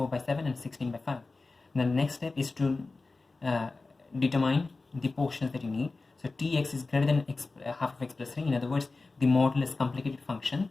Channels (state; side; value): quieter; right; 3.6 dB